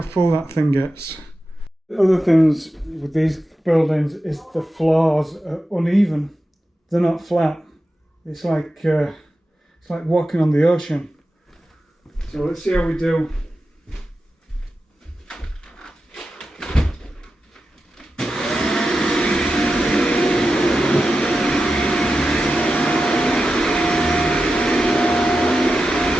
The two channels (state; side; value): normal; both; correlation 0.91